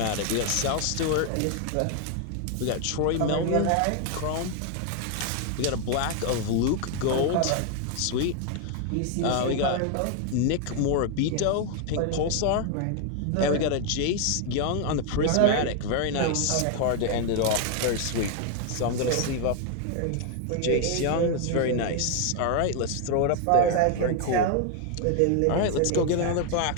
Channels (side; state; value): both; different; correlation 0.00